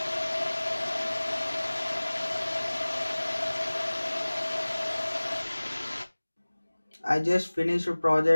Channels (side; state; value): both; inverted; correlation -1.00